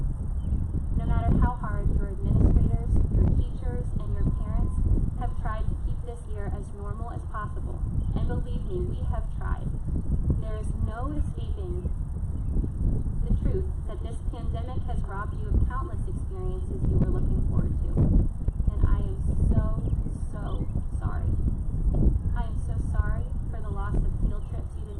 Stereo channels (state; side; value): identical; both; correlation 1.00